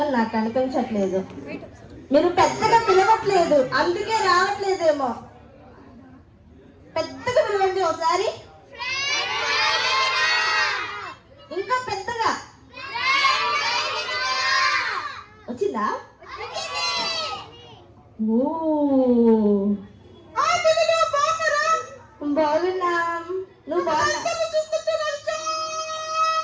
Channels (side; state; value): both; identical; correlation 1.00